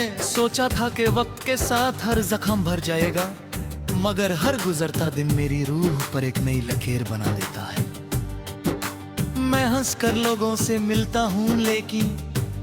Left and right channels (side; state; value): both; identical; correlation 1.00